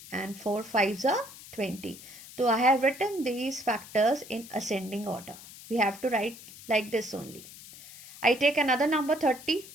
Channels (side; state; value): left; noise; hiss, 17 dB below the sound